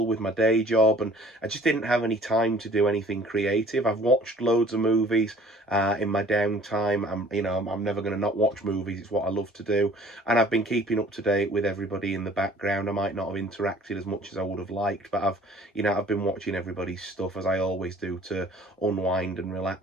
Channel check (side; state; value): both; normal; correlation 0.52